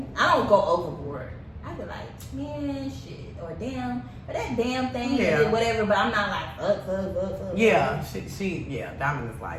I don't go overboard. I'd be like, man, shit, or damn, or that damn thing, or whatever. But I'm not like, fuck. Yeah, yeah. Diamond is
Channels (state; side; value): identical; both; correlation 1.00